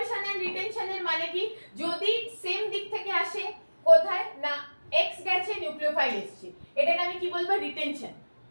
এন্ড রিটেনশনের মানে কি, যদি সেম দিক থেকে আসে, কোথায় না X গেছে নিউক্লিওফাইল এসেছে, এটাকে আমি কি বলবো,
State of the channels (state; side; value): inverted; both; correlation -1.00